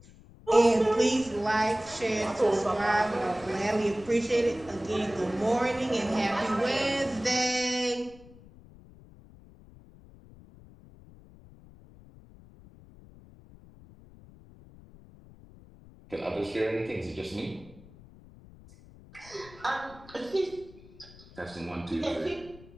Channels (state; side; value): noise; left; rumble, 22 dB below the sound